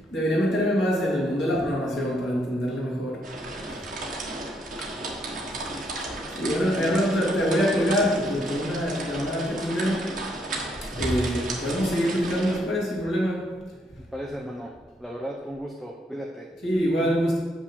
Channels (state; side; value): normal; both; correlation 0.73